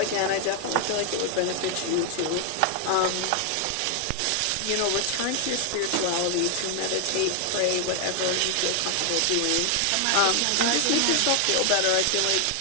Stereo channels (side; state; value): both; different; correlation 0.00